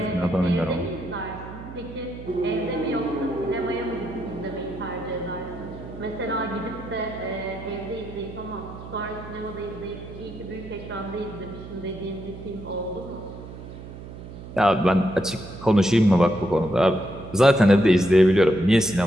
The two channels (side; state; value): right; noise; hum, 13 dB below the sound